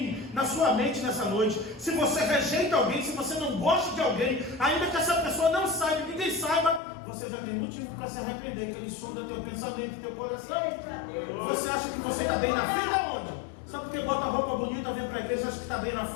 na sua mente nessa noite, se você rejeita alguém, se você não gosta de alguém, ainda que essa pessoa não saiba, ninguém saiba, você já tem motivo para se arrepender, que Ele sonda teu pensamento, teu coração. Você acha que você está bem na vida onde? Só porque bota roupa bonita, vem para a igreja, acha que está bem na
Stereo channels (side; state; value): right; drops out; at 6.8 s